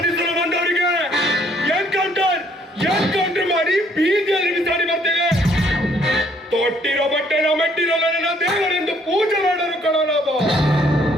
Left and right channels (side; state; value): both; normal; correlation 0.65